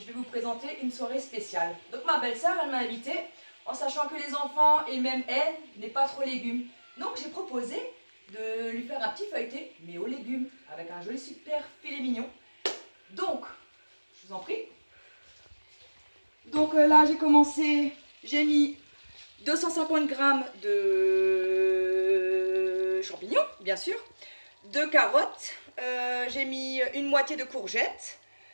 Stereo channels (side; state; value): both; inverted; correlation -1.00